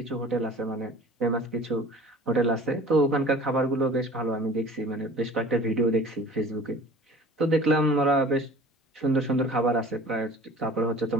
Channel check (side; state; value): both; normal; correlation 0.44